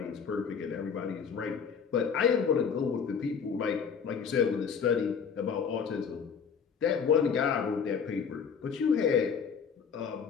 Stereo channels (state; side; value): quieter; right; 6.6 dB